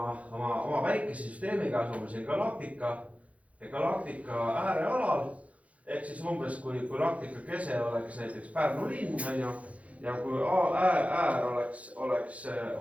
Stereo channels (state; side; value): late; left; 0.066 ms